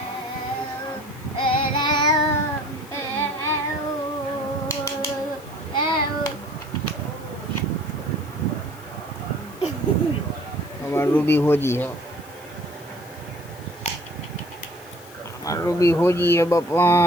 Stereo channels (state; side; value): noise; left; hiss, 22 dB below the sound